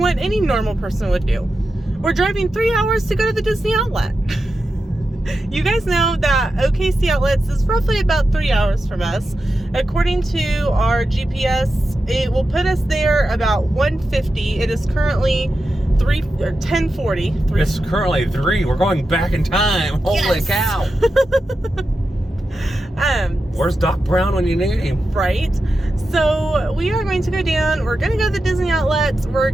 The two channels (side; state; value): both; normal; correlation 0.90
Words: any normal person would do. We're driving 3 hours to go to the Disney Outlet. You guys know that OKC Outlets is roughly about 3 hours from us. According to our GPS, it will put us there about 1:50. It is currently 10:40. It's currently 3. We're going back in time. Holy cow. Where's Doc Brown when you need him? Right. So we are going to go down. We're going to go to the Disney Outlets. We're